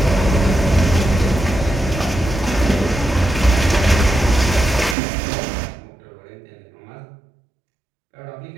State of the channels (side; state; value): left; drops out; at 5.0 s